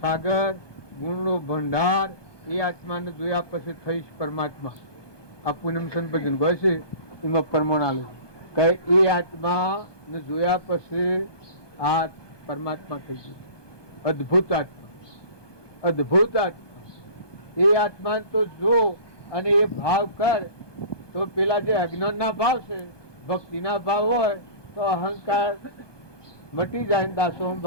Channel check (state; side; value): late; right; 1.2 ms